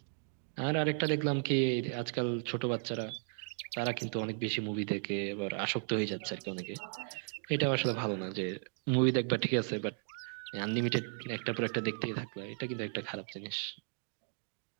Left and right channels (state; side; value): silent; left; 54 dB below the other